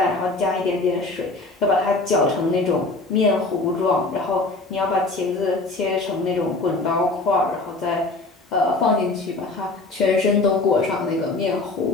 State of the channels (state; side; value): quieter; right; 3.3 dB